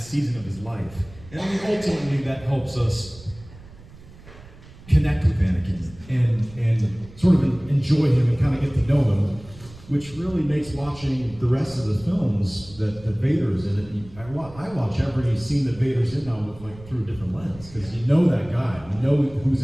of his life. And I mean, ultimately, that helps us connect with Anakin and sort of enjoy him and kind of get to know him, which really makes watching the rest of the films that Vader's in it. I watch every scene that Vader's in now with, like, through a different lens, because you know that guy, you know who's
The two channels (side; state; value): right; noise; rumble, 20 dB below the sound